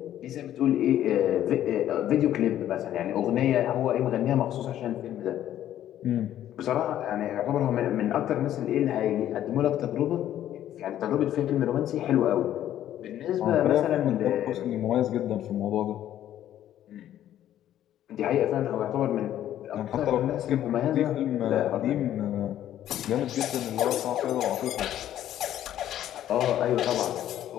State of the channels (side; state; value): right; quieter; 11.8 dB